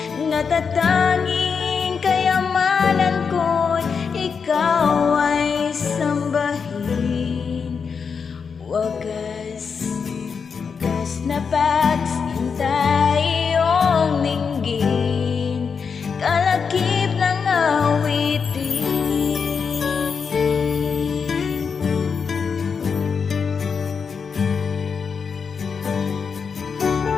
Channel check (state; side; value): quieter; right; 5.9 dB